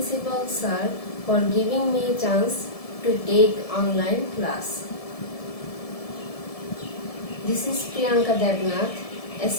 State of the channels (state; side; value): late; right; 1.7 ms